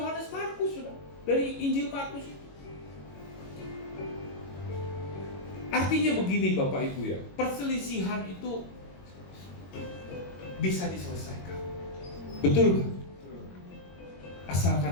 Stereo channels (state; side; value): late; right; 22 ms